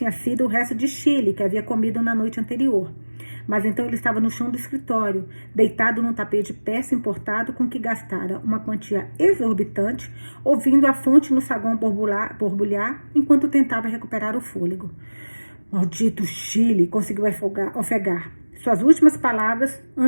sido o resto de chile que havia comido na noite anterior. Mas então ele estava no chão do escritório, deitado num tapete de peça importado com que gastara uma quantia exorbitante, ouvindo a fonte no saguão borbulhar enquanto tentava recuperar o fôlego. Maldito Chile, conseguiu ofegar suas últimas palavras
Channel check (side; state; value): both; inverted; correlation -1.00